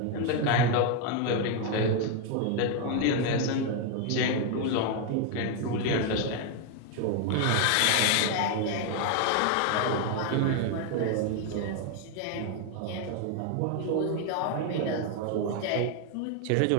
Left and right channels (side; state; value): both; different; correlation 0.01